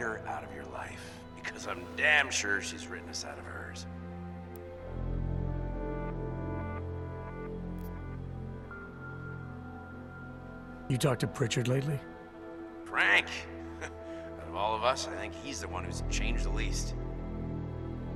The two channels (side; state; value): both; identical; correlation 1.00